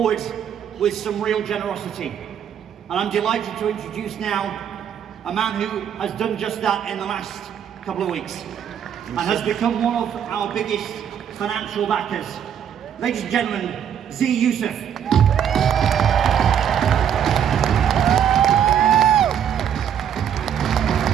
with some real generosity. And I'm delighted to introduce now a man who has done just that in the last couple of weeks and has become one of our biggest financial backers. Ladies and gentlemen, Zia Yusufs.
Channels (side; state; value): left; quieter; 8.9 dB